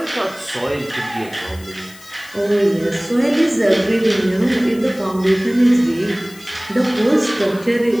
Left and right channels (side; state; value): left; noise; hiss, 21 dB below the sound